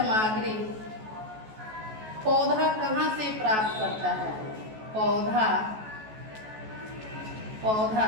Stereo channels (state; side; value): late; left; 14 ms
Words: पौधा कहाँ से प्राप्त करता है? पौधा